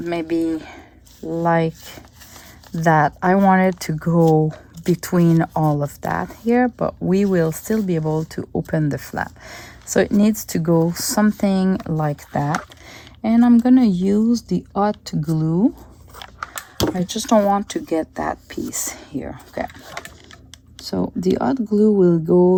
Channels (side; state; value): both; identical; correlation 1.00